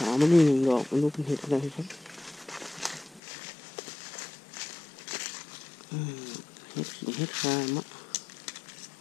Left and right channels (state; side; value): drops out; right; at 3.2 s